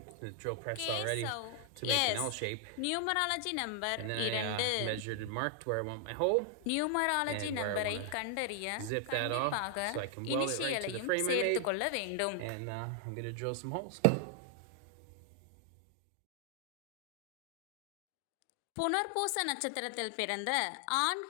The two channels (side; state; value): both; different; correlation 0.00